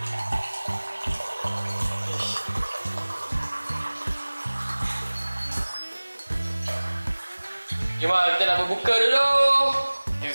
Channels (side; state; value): both; inverted; correlation -1.00